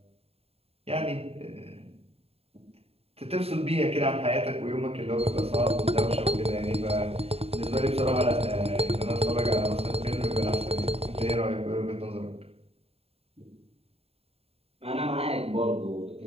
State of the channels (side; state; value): left; late; 0.29 ms